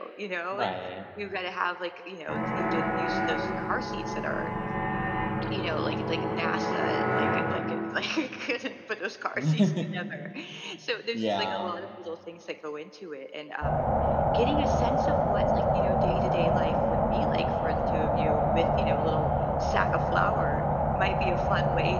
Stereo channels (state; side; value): identical; both; correlation 1.00